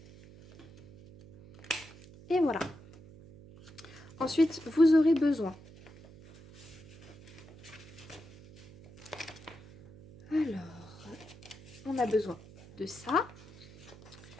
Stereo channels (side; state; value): right; noise; hum, 20 dB below the sound